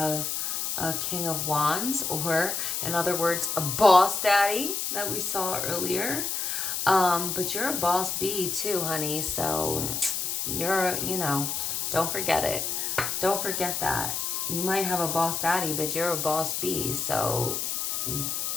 a King of Wands, or in other words, a boss daddy that we saw earlier. But you're a boss bee too, honey. So you're, don't forget it. Don't forget that. You might have a boss daddy, but you're a boss bee. So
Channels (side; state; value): left; noise; hiss, 1 dB below the sound